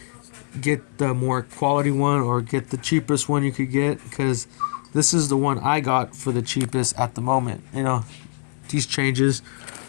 get the more quality one or get the cheapest one you could get, because this is the one I got for the cheapest at the moment. You know, these changes.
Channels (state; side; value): silent; right; digital silence